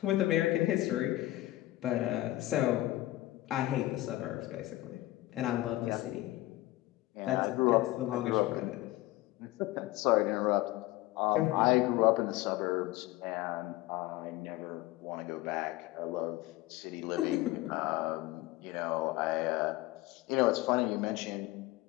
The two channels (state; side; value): quieter; right; 17.6 dB